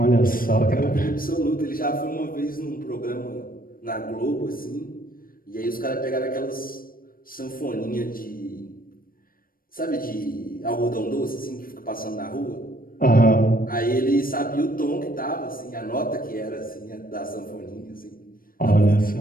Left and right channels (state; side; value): late; right; 0.41 ms